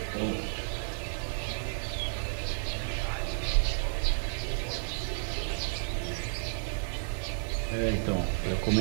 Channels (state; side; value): silent; left; digital silence